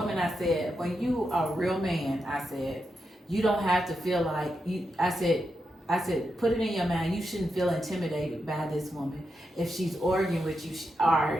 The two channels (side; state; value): both; normal; correlation 0.86